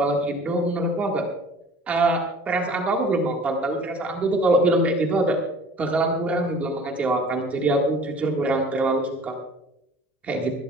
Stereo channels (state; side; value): normal; both; correlation 0.47